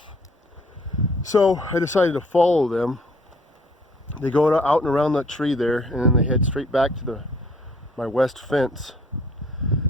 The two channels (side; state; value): both; normal; correlation 0.60